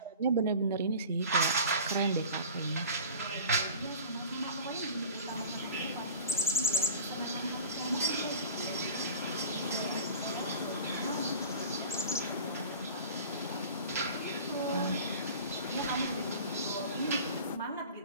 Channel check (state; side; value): inverted; both; correlation -0.38